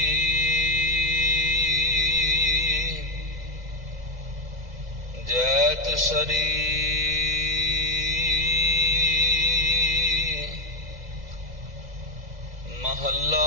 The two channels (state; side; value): late; left; 2.0 ms